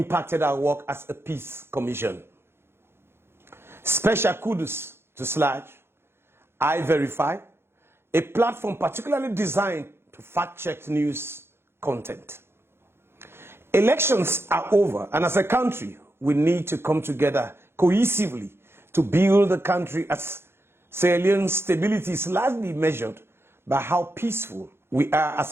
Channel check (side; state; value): left; late; 0.12 ms